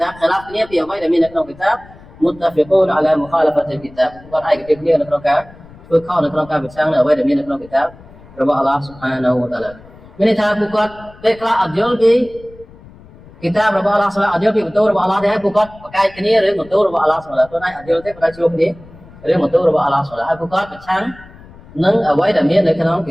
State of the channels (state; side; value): noise; left; rumble, 22 dB below the sound